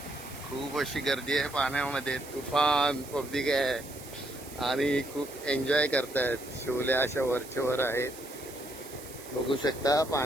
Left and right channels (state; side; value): noise; right; hiss, 16 dB below the sound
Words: खूप अशी गर्दी आहे पाण्यामध्ये, तुफान पब्लिक आहे आणि खूप एन्जॉय करतायत। शिवल्या अशा वरच्यावर आहेत, बघू शकता।